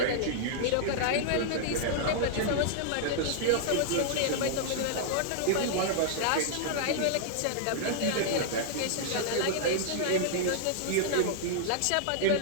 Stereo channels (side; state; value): both; different; correlation -0.01